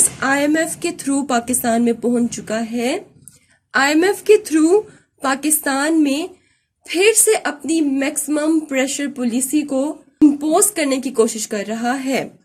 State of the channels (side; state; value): both; identical; correlation 1.00